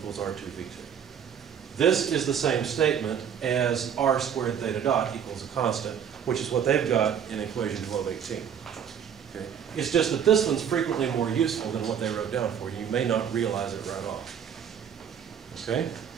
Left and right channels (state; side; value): quieter; left; 8.2 dB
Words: R2 V2. This is the same statement as r squared theta dot equals a constant, which is what they've got in equation 1218. Okay? It's just that this one's frequently more useful than what they wrote down for you. You may not realize it right off. Okay?